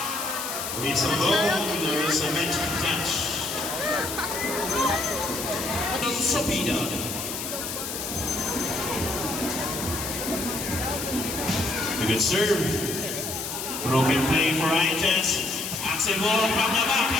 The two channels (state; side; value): noise; left; hiss, 5 dB below the sound